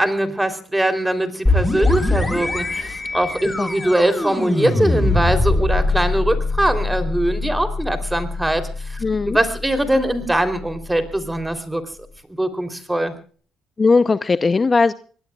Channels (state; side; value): normal; both; correlation 0.91